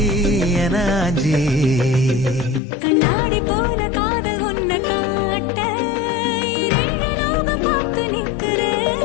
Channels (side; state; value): right; drops out; at 2.6 s